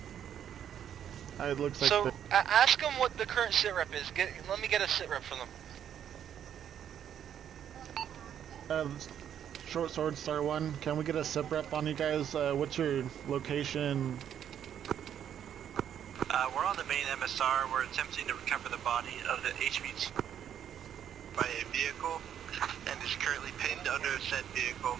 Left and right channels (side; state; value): left; quieter; 9.4 dB